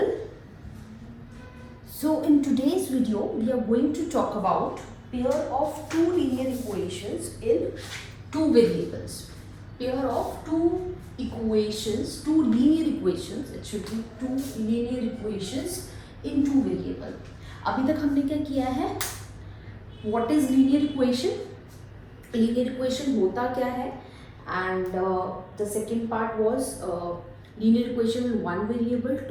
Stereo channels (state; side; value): identical; both; correlation 1.00